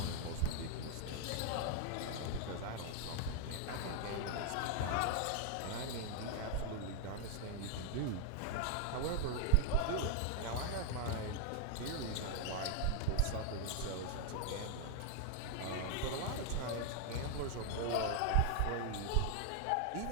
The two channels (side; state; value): both; different; correlation 0.00